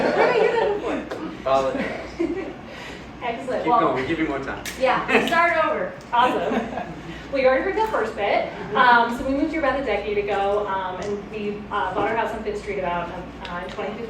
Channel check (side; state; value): both; identical; correlation 1.00